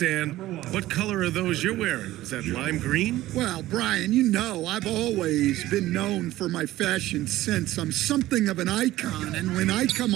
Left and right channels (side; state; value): left; quieter; 15.8 dB